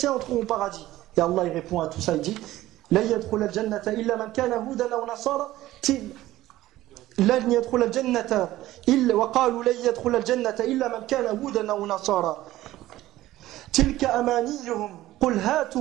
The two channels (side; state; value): left; quieter; 15.7 dB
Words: entreront au paradis. Et Allah il répond à tout ça, il dit لا يدخل الجنة إلا من كان هودا أو نصارى لن يدخل الجنة إلا وقالوا لن يدخل الجنة إلا من كان هودا أو نصارى تلك أمانيهم قل